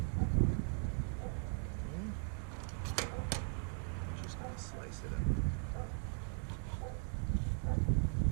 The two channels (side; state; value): left; silent; 52 dB below the other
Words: Slice it up.